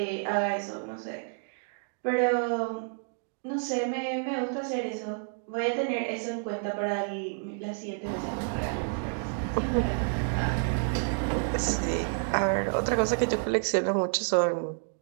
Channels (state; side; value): silent; left; 58 dB below the other